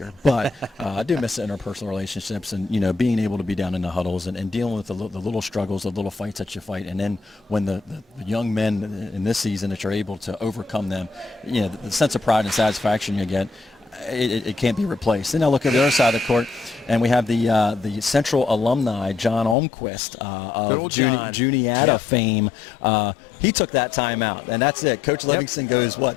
but I do miss the interpersonal relationships and, being able to be down in the huddles and dealing with the little struggles, the little fights that you fight. And then when the young men in this season that you're able to overcome them, the sense of pride and satisfaction you get, it can't be replaced. And now look at the other side of the court, and we have the Central alumni, John Olmquist, of good old John. Juniata fame. He took that time out, and that's it. Coach Livingston goes,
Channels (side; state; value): right; drops out; at 19.6 s